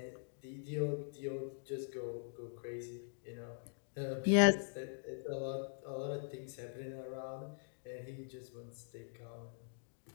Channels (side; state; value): right; silent; digital silence